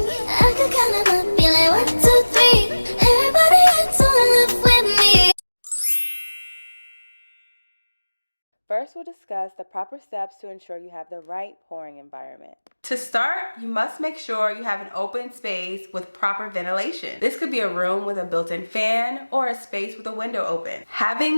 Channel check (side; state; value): both; inverted; correlation -1.00